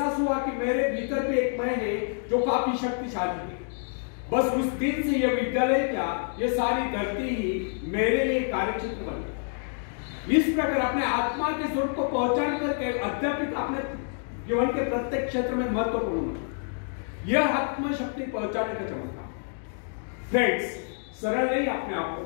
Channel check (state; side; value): silent; right; 60 dB below the other